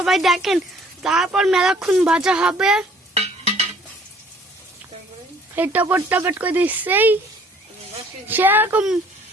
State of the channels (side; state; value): both; normal; correlation 0.57